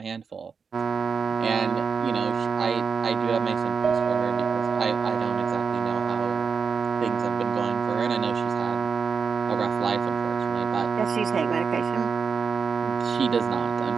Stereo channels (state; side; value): quieter; left; 5.7 dB